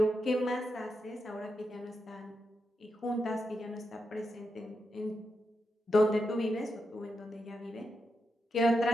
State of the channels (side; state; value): both; normal; correlation 0.86